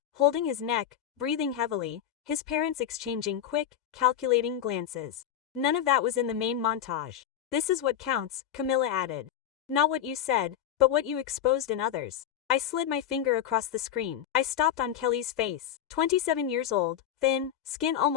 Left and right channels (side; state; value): right; quieter; 10.1 dB